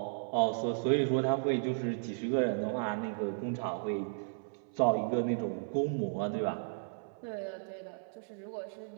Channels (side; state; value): left; silent; 55 dB below the other